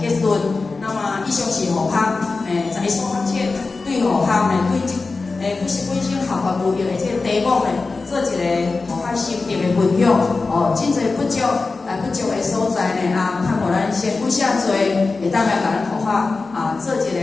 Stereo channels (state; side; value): quieter; right; 3.9 dB